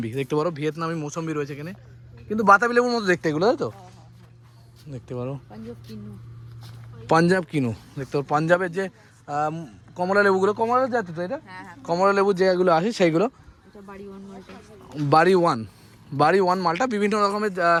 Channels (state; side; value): identical; both; correlation 1.00